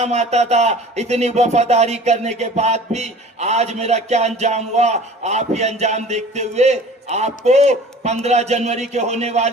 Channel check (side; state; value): both; normal; correlation 0.44